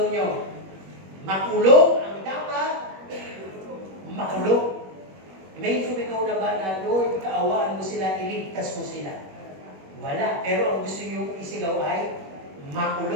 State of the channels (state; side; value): late; left; 21 ms